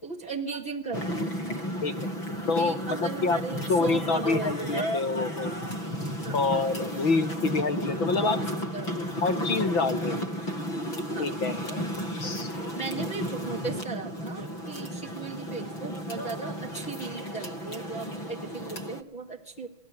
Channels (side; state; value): right; late; 6.0 ms